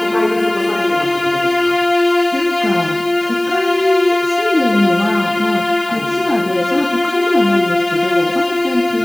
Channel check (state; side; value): noise; left; hiss, 21 dB below the sound